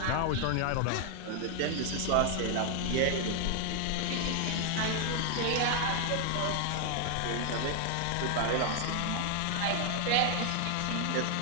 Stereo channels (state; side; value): different; both; correlation 0.00